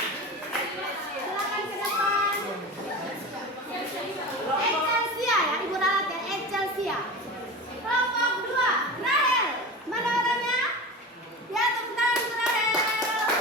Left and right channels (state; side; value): normal; both; correlation 0.29